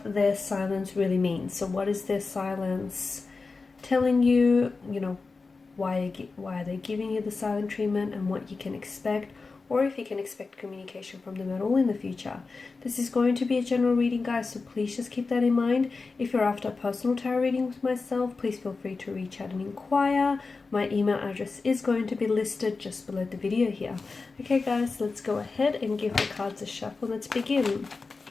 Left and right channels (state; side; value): quieter; right; 4.1 dB